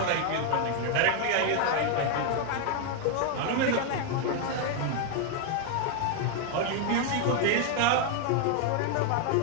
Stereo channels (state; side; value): different; both; correlation 0.00